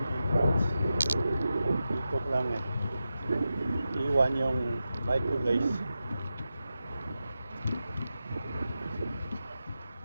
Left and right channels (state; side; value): inverted; both; correlation -0.90